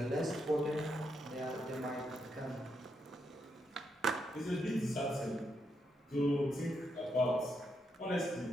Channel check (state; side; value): normal; both; correlation 0.80